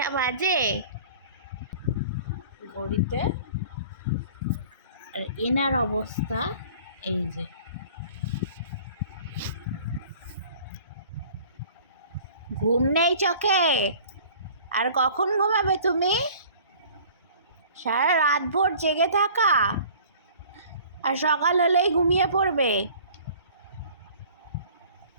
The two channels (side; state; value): both; inverted; correlation -0.48